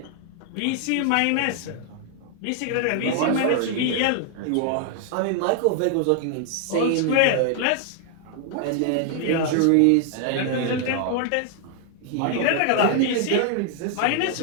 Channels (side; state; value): both; different; correlation 0.00